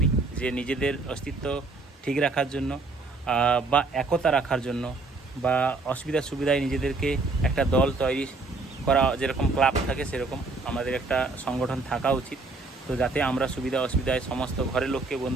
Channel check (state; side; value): quieter; left; 3.6 dB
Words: যে নিজেদের অস্তিত্ব ঠিক রাখার জন্য বা একতা রাখার জন্য বা অসুবিধা সুবিধায় নিজেদেরকে একটা দল তৈরি করা, যেরকম ক্লাব থাকে সেরকম আমাদের একটা সংগঠন থাকা উচিত। তো যাতে আমরা সুবিধা অসুবিধায় সমস্ত ঘরের লোককে,